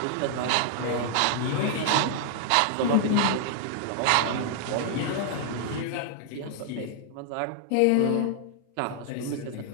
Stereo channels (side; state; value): both; different; correlation 0.00